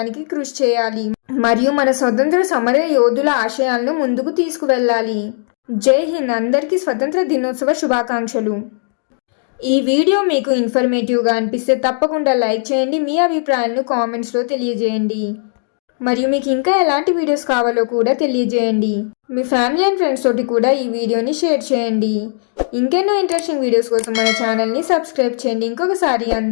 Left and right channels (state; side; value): silent; right; digital silence